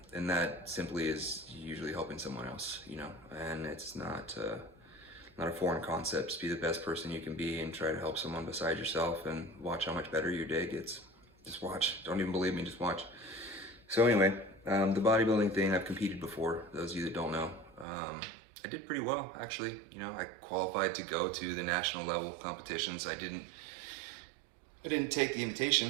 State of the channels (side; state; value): left; drops out; at 17.9 s